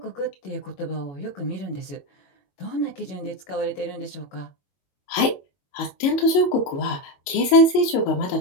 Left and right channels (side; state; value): right; late; 22 ms